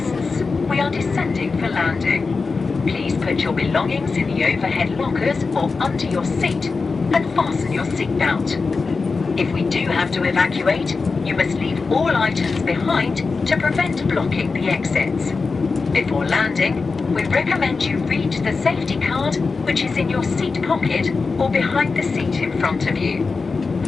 we are descending for landing. Please put your belongings in the overhead lockers or under your seat and fasten your seatbelt. If we do have to evacuate, you must leave all items behind to prevent blocking the exits. Before landing, we recommend you read the safety card, which is in your seat pocket or behind the seat in front of you.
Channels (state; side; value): quieter; right; 4.4 dB